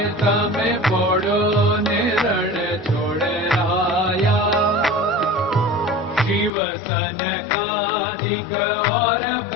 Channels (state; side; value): drops out; right; at 6.5 s